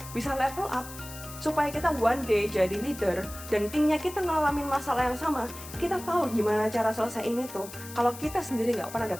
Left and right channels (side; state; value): left; noise; hiss, 14 dB below the sound